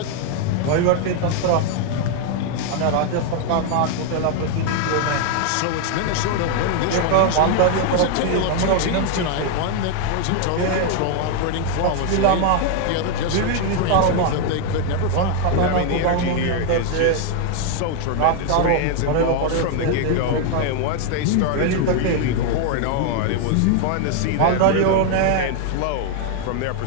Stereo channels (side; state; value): both; different; correlation 0.00